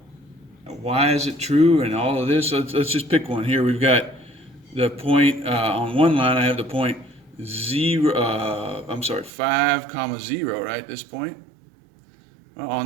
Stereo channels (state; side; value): drops out; left; at 9.3 s